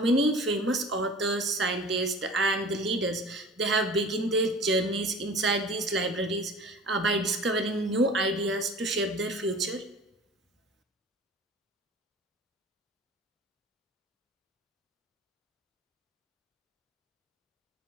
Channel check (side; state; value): both; normal; correlation 0.42